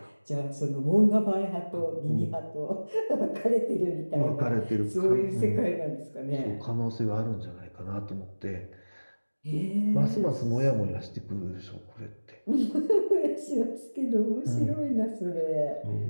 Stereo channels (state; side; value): inverted; both; correlation -1.00